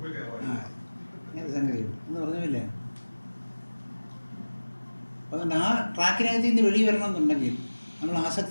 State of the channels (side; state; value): both; inverted; correlation -1.00